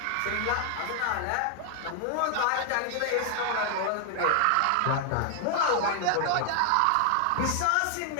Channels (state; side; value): different; both; correlation 0.00